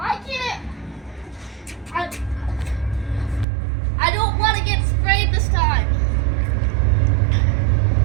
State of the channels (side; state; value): left; drops out; at 3.5 s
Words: can't it? I don't want to get sprayed this time.